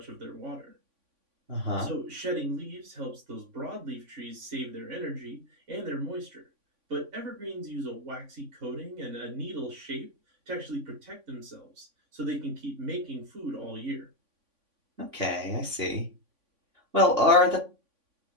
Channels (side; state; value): left; late; 3.5 ms